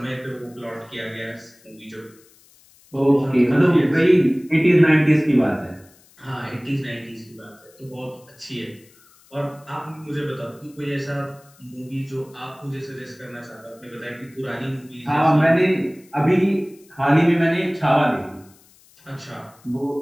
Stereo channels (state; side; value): noise; left; hiss, 28 dB below the sound